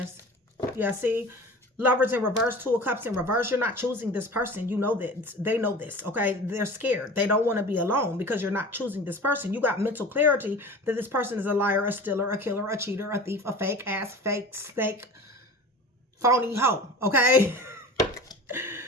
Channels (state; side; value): normal; both; correlation 0.37